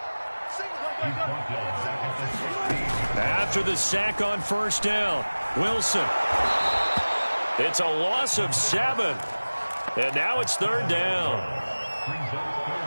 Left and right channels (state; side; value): inverted; both; correlation -1.00